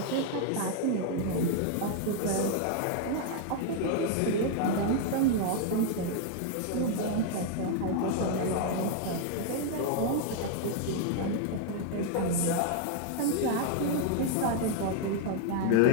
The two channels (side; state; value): both; different; correlation 0.00